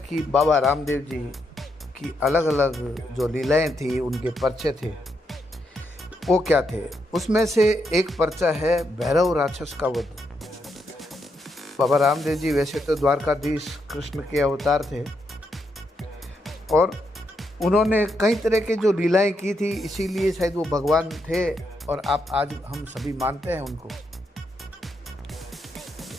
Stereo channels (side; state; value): both; normal; correlation 0.80